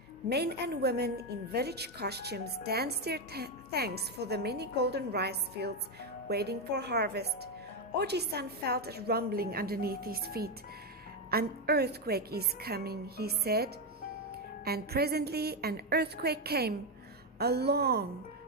men and women in village costumes danced their thanks for the many golden rice fields waiting for harvest. Oji-san felt a rumbling underneath his feet. An earthquake is coming, he said. And presently an earthquake came, a long,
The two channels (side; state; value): both; normal; correlation 0.06